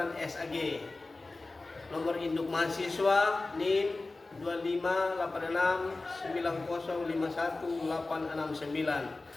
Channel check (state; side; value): quieter; right; 3.3 dB